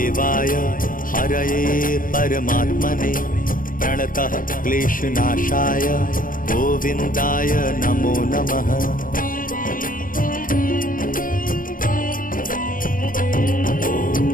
हरये परमात्मने प्रणतः क्लेशनाशाय गोविन्दाय नमो नमः।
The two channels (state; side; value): late; right; 0.40 ms